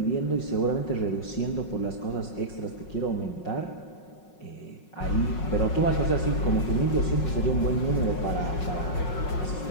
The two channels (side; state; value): right; late; 5.5 ms